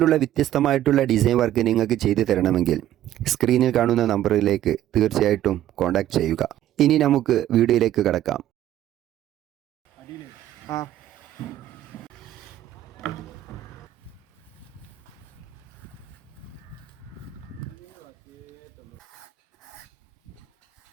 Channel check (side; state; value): left; quieter; 12.6 dB